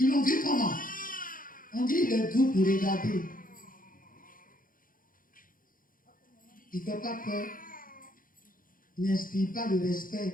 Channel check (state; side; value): late; right; 0.40 ms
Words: l'ont vu comment? On dit il est doux pour regarder. Il ne fait pas peur. Il n'inspire pas le